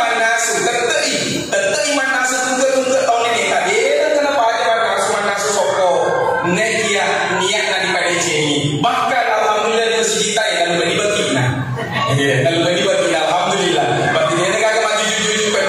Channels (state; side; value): identical; both; correlation 1.00